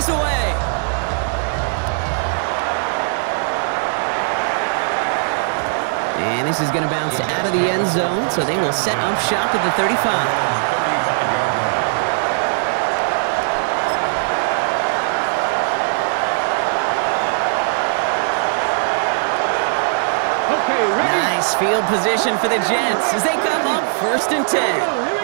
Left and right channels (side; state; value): left; silent; digital silence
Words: away. And this is going to bounce out of the end zone, so they will set up shop at the 35. 35-yard line. Okay, ready? Nice field position for the Jets as they come up 1st and 10. Here we